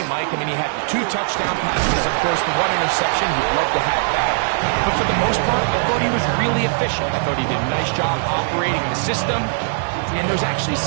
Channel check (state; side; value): silent; left; digital silence